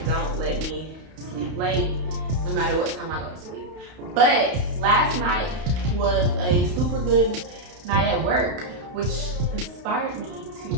don't let me sleep late, no matter what time I go to sleep. But last night was a super good night at work, which inspired me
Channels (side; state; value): left; late; 32 ms